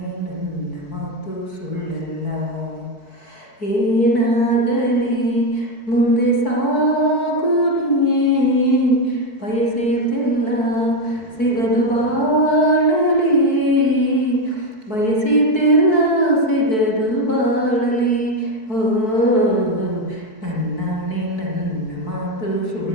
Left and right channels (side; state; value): right; late; 4.6 ms